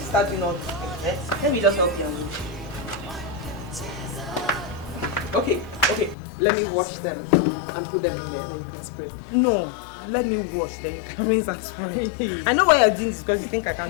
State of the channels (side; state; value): right; drops out; at 6.2 s